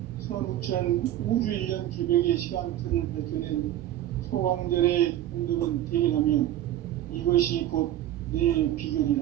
선우천 우주 1년 개벽의 시간틀을 밝혀낸 소강절의 공덕은 대견하며 이것이 곧 내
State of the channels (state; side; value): quieter; left; 12.8 dB